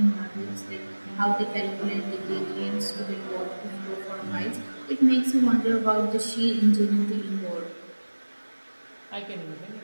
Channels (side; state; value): both; inverted; correlation -1.00